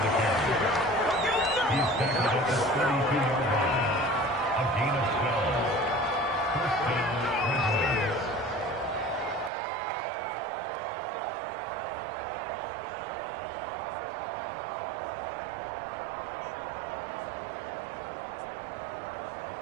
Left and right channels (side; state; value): left; drops out; at 9.5 s